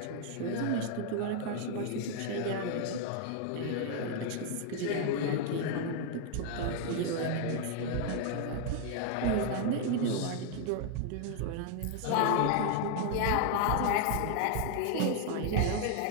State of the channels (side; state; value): both; different; correlation 0.00